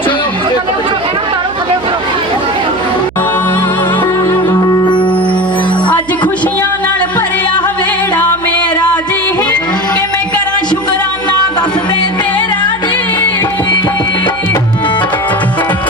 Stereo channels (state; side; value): noise; right; hum, 19 dB below the sound